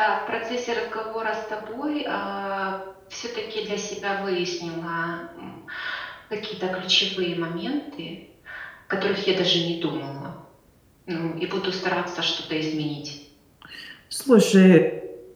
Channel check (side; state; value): both; identical; correlation 1.00